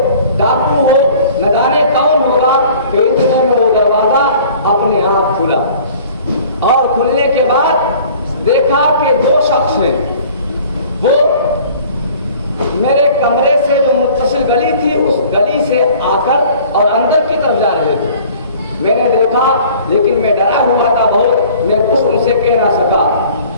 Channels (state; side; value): inverted; both; correlation -0.49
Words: ڈاکو ہو، نہ جانے کون ہوگا کہ اتنے میں وہ دروازہ اپنے آپ کھلا، اور کھلنے کے بعد دیکھا کہ 2 شخص ہیں، وہ میرے کمرے سے جو متصل گلی تھی اس گلی سے آ کر اور اندر کی طرف جا رہے تھے۔ میں نے دیکھا لیکن میں ڈرا ہوا تھا بہت، میں کچھ ان سے کہہ نہ سکا۔